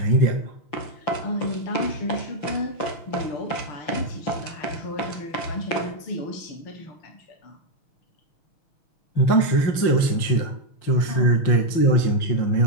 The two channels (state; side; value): late; right; 5.8 ms